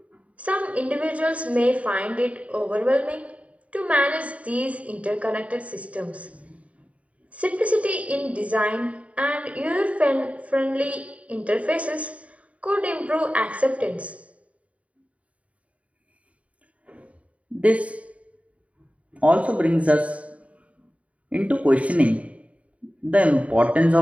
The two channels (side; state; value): left; late; 0.066 ms